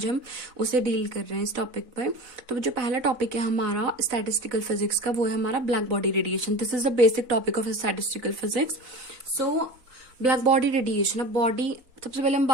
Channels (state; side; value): late; left; 4.0 ms